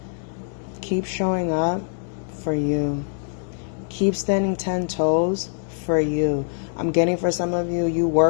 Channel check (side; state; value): right; silent; digital silence